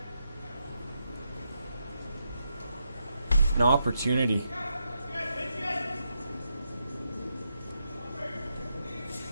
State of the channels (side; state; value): both; inverted; correlation -0.83